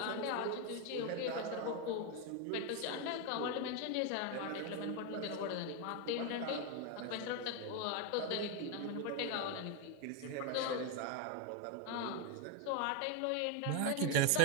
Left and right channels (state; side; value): different; both; correlation 0.01